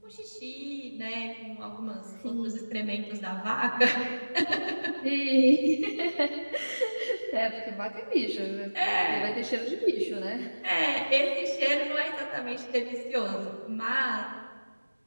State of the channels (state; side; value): inverted; both; correlation -1.00